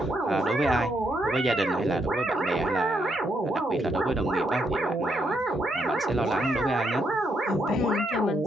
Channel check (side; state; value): both; normal; correlation 0.77